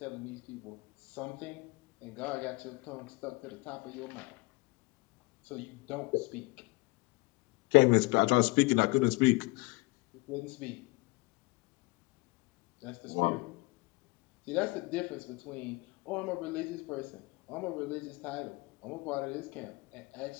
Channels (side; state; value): right; quieter; 24.9 dB